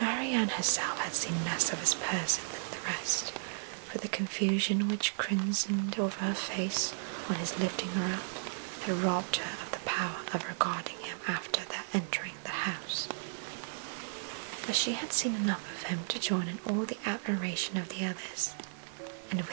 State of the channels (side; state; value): left; silent; 55 dB below the other